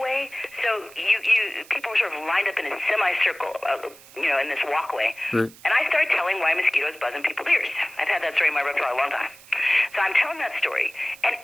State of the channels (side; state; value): right; noise; hiss, 22 dB below the sound